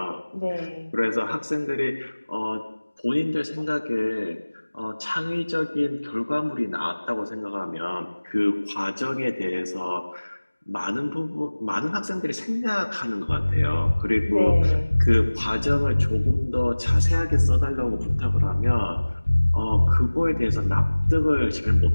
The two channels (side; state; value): both; inverted; correlation -1.00